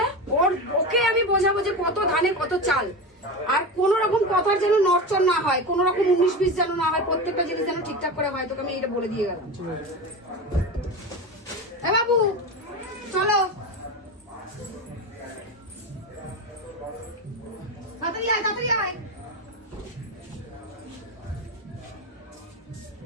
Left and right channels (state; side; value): normal; both; correlation 0.23